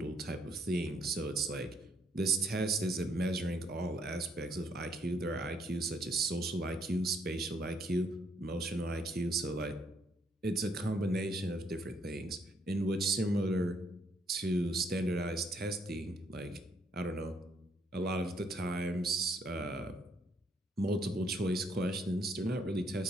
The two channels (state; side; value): normal; both; correlation 0.70